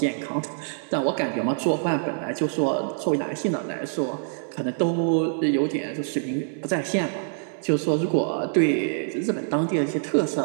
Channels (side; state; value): left; silent; 62 dB below the other